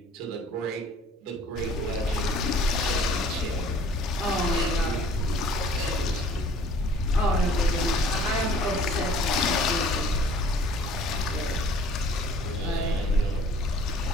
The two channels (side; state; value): both; normal; correlation 0.53